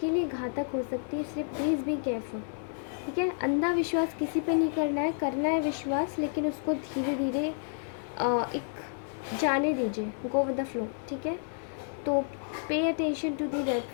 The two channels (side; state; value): right; silent; digital silence